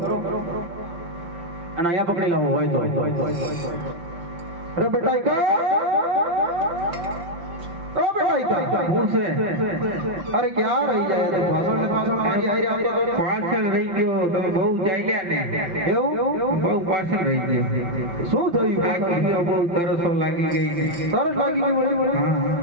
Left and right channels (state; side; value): late; left; 5.8 ms